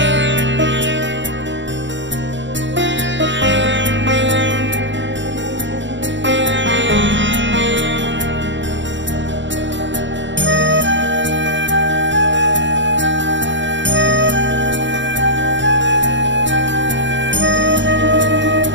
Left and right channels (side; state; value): left; late; 0.54 ms